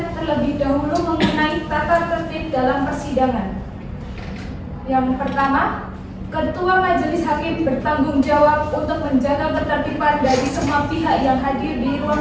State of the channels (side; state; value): both; identical; correlation 1.00